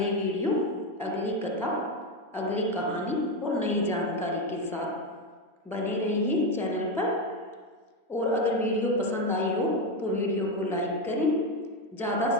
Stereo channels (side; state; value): both; normal; correlation 0.11